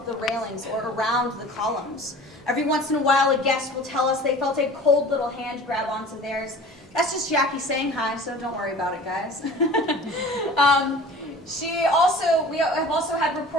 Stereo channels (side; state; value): both; normal; correlation 0.42